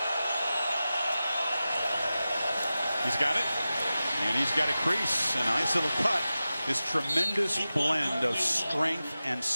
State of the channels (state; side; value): inverted; both; correlation -0.94